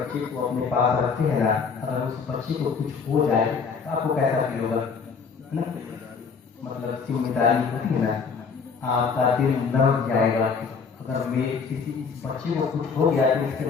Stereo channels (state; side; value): quieter; right; 5.5 dB